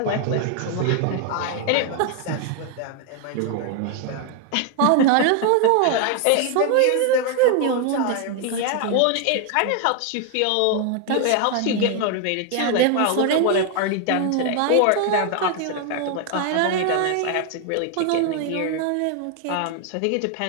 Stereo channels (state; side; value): different; both; correlation 0.00